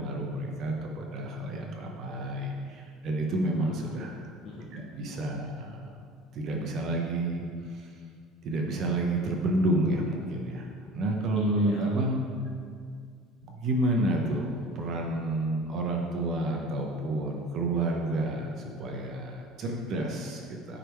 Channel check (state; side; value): normal; both; correlation 0.40